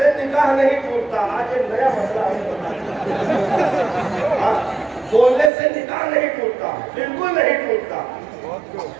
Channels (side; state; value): left; drops out; at 5.5 s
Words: निकाह नहीं टूटता। आज एक नया मसला है, बोलने से निकाह नहीं टूटता, बिल्कुल नहीं टूटता।